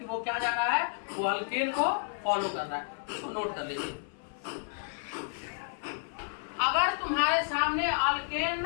वो क्या जा रहा है, वो अल्केन को फॉलो कर रहा है, इसको नोट कर लीजिए। अगर तुम्हारे सामने अल्केन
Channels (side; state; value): right; silent; 57 dB below the other